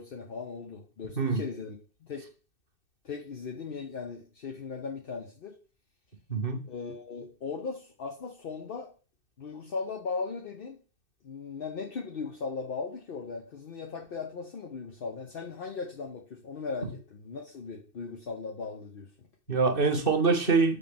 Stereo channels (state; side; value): late; right; 2.6 ms